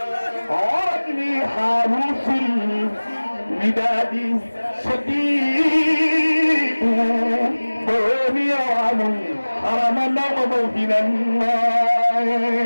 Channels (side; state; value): both; inverted; correlation -1.00